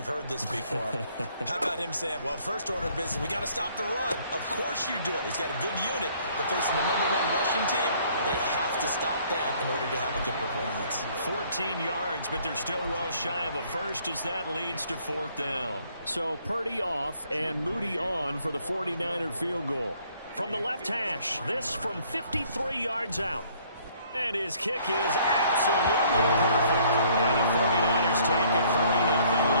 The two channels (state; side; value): inverted; both; correlation -0.62